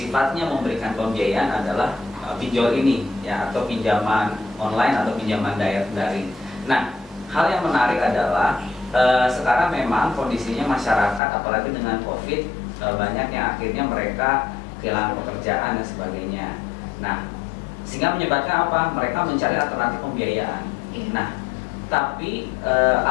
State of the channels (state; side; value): drops out; right; at 11.2 s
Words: memberikan pembiayaan adalah pinjol ini, ya, atau pinjaman online atau pinjaman daring. Nah, hal yang menarik adalah sekarang memang kondisinya masyarakat, apalagi dengan COVID, banyak yang akhirnya mereka kehilangan pekerjaan dan sebagainya. Nah, sehingga menyebabkan apa? Mereka mencari alternatif pembiayaan. Nah, tapi